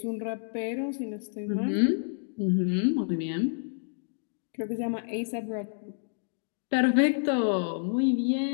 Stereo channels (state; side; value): silent; right; digital silence